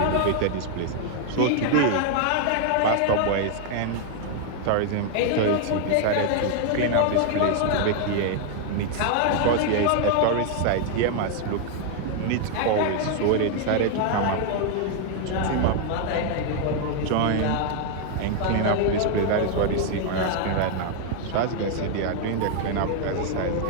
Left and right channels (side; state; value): both; different; correlation 0.00